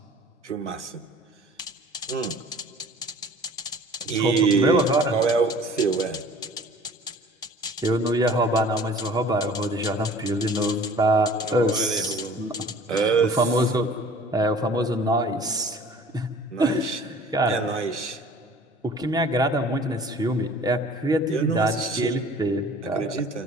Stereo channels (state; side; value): normal; both; correlation 0.48